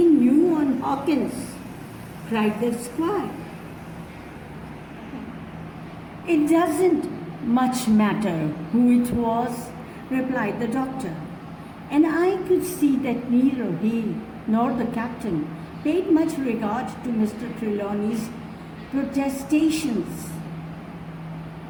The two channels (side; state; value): both; identical; correlation 1.00